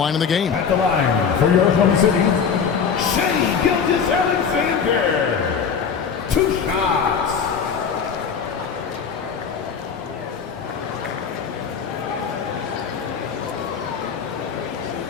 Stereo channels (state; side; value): quieter; right; 6.5 dB